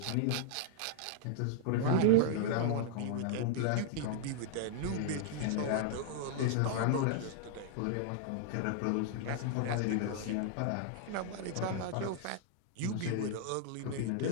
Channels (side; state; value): both; different; correlation -0.01